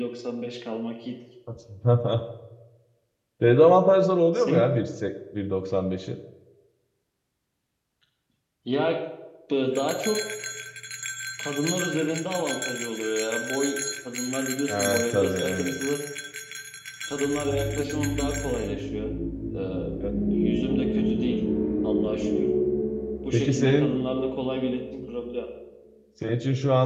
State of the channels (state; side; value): identical; both; correlation 1.00